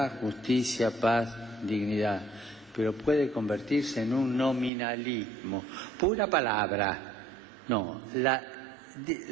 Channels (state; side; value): drops out; left; at 4.7 s